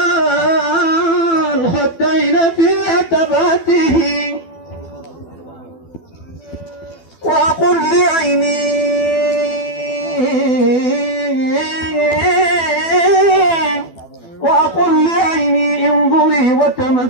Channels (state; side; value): late; right; 12 ms